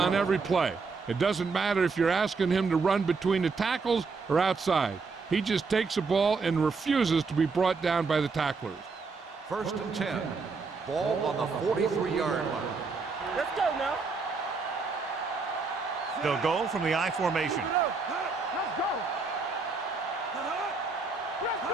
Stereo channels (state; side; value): quieter; left; 4.5 dB